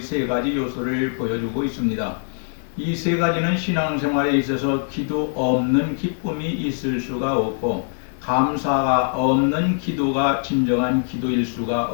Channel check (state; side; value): silent; right; digital silence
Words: 가지 요소를 보여주고 있습니다. 이 세 가지는 신앙생활에 있어서 기도 없는 기쁨이 있을 수가 없고 감사가 없는 기도가 진정한 기도일 수가